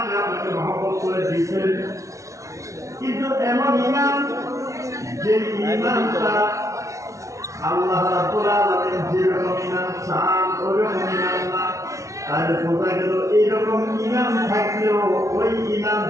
আপনাকে মহব্বত করে দিয়েছেন, কিন্তু এমন ঈমান যে ঈমানটা আল্লাহ রাব্বুল আলামিন যেরকম ঈমান চান ওইরকম ঈমান না। তাহলে বোঝা গেল এইরকম ঈমান থাকলেও ওই ঈমান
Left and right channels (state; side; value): late; left; 0.15 ms